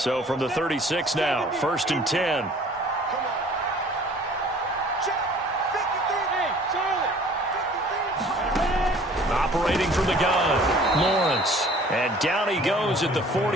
from the 36 now, 1st and 10. Operating from the gun, Lawrence. And down he goes at the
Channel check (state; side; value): normal; both; correlation 0.51